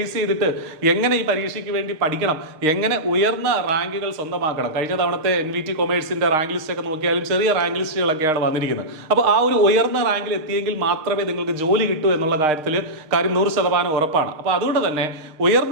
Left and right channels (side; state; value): left; late; 6.5 ms